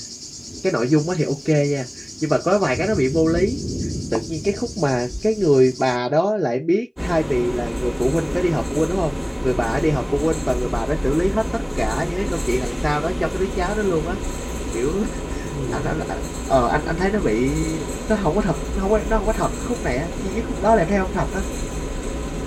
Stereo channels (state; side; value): identical; both; correlation 1.00